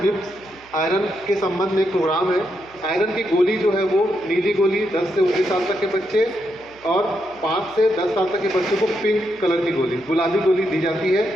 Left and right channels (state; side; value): noise; right; hum, 28 dB below the sound